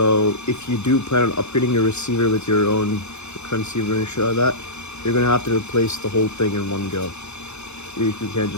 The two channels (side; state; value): right; late; 0.81 ms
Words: if you do plan on upgrading your receiver with your own transceiver and shit like that, you're gonna have to replace the whole thing in one go. You can't